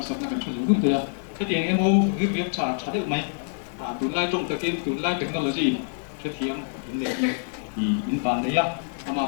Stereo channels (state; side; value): silent; right; digital silence